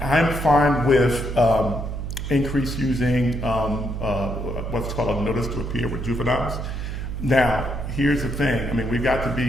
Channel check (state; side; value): noise; right; hum, 5 dB below the sound